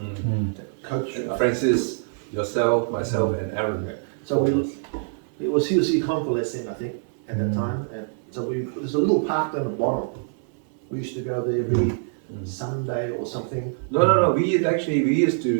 Coach Francis, yourself, myself, and Aaron. So he was convalescing, I think, at that time. And so there's a little park down the bottom. We used to go there every Sunday or something. No. We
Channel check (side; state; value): left; silent; 62 dB below the other